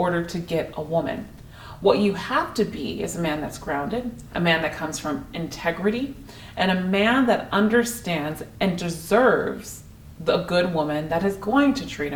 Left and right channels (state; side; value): identical; both; correlation 1.00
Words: to get a woman. What you have to be is a man that's grounded, a man that comes from integrity, and a man that understands and deserves the good woman that is going to treat